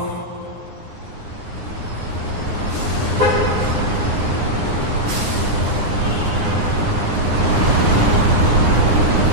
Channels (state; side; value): late; left; 9.7 ms